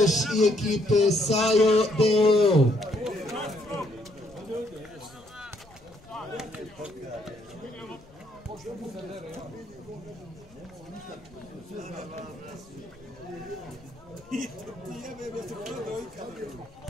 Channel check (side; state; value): left; noise; rumble, 26 dB below the sound